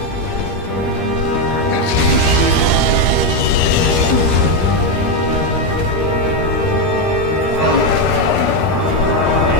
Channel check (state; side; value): late; right; 13 ms